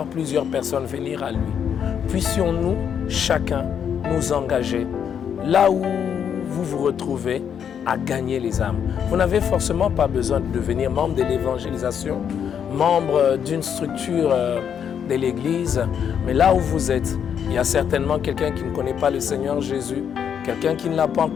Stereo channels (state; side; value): quieter; right; 8.1 dB